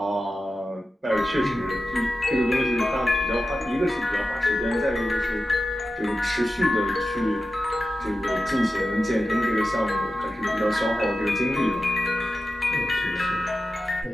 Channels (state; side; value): normal; both; correlation 0.92